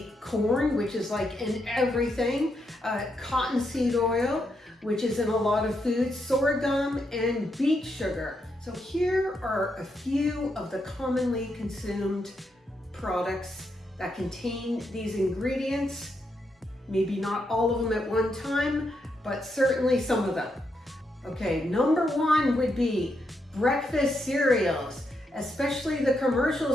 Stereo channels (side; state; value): both; normal; correlation 0.81